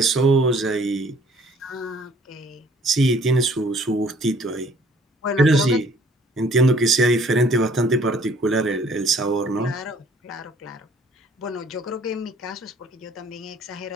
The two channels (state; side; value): normal; both; correlation 0.57